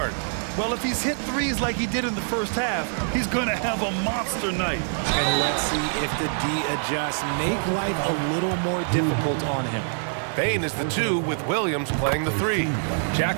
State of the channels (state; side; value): silent; left; digital silence